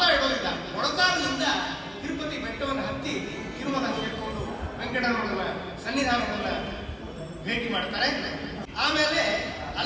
ಇಡೋದಿಲ್ಲ. ಮೊಳಕಾಲಿನಿಂದ ತಿರುಪತಿ ಬೆಟ್ಟವನ್ನು ಹತ್ತಿ ತಿರುಮಲ ಸೇರಿಕೊಂಡು ವೆಂಕಟರಮಣನ ಸನ್ನಿಧಾನವನ್ನ ಭೇಟಿ ಮಾಡ್ತಾರೆ. ಆಮೇಲೆ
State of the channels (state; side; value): identical; both; correlation 1.00